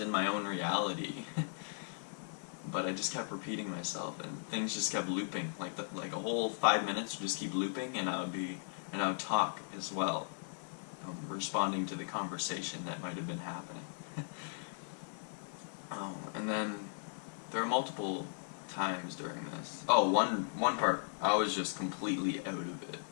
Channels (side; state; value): right; silent; 53 dB below the other